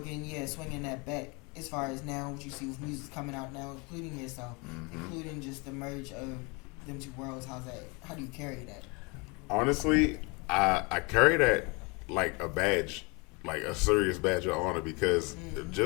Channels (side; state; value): right; quieter; 29.1 dB